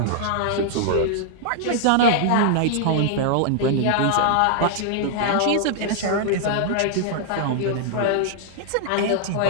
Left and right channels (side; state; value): both; different; correlation -0.01